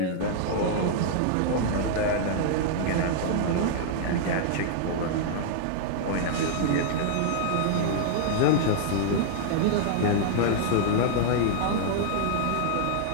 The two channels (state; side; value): different; both; correlation -0.01